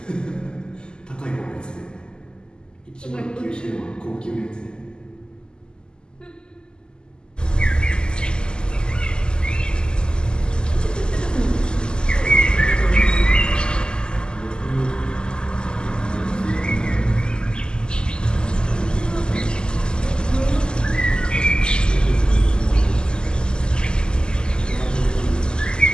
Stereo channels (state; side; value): late; right; 0.047 ms